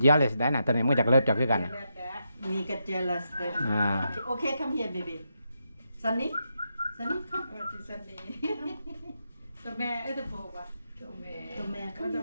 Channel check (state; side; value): inverted; both; correlation -0.83